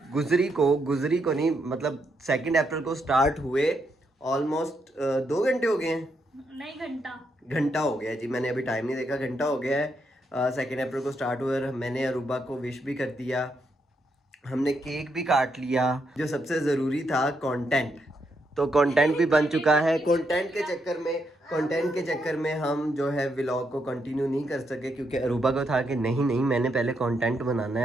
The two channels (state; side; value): normal; both; correlation 0.79